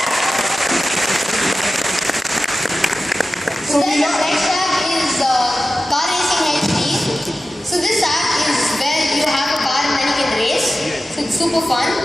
So then the next app is Car Racing HD. So this app is where you have a car and then you can race. So it's super fun.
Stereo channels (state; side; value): normal; both; correlation 0.94